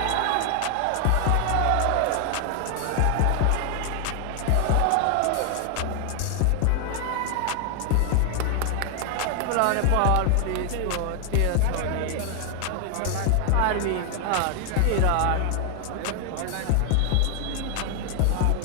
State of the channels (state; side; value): different; both; correlation 0.00